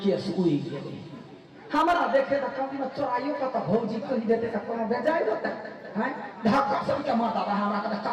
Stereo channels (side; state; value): both; identical; correlation 1.00